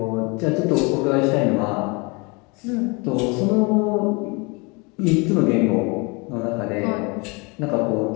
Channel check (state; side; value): quieter; right; 29.1 dB